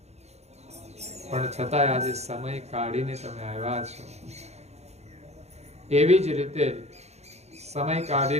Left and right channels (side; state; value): left; late; 0.31 ms